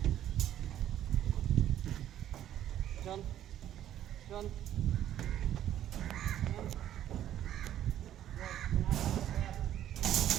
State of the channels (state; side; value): quieter; left; 11.5 dB